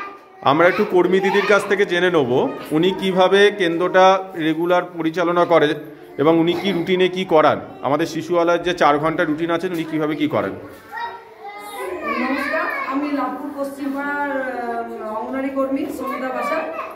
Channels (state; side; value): identical; both; correlation 1.00